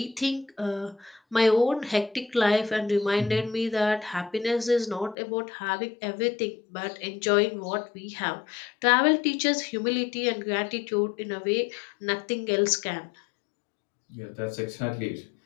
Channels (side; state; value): right; drops out; at 5.2 s